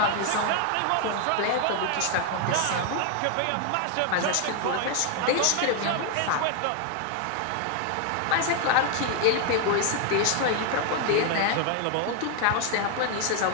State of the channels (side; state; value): both; different; correlation 0.00